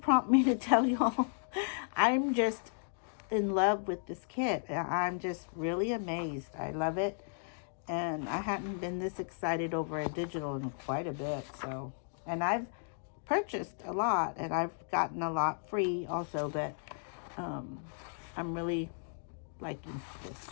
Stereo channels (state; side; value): silent; right; digital silence